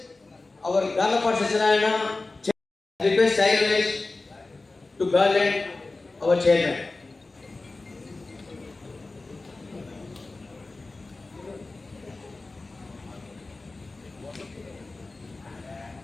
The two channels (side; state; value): right; quieter; 3.4 dB